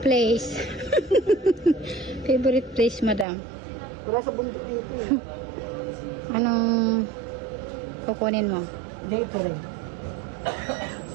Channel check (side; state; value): left; drops out; at 3.2 s